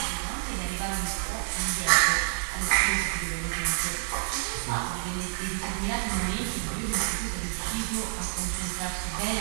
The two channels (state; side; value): silent; left; digital silence